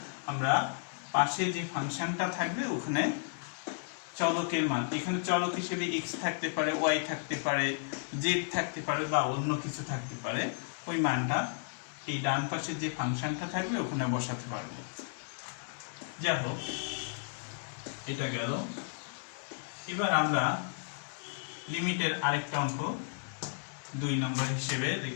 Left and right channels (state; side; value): silent; right; digital silence